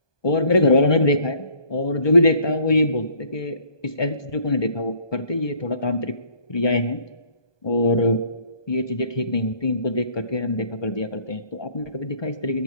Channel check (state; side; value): late; right; 1.2 ms